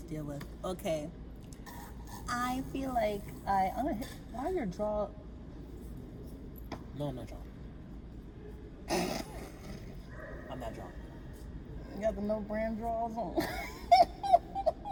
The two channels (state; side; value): identical; both; correlation 1.00